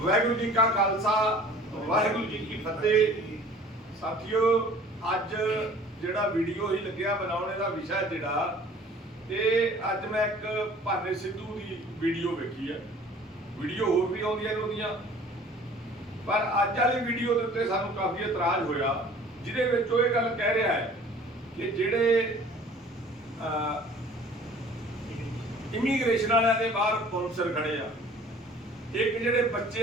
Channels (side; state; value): both; normal; correlation 0.49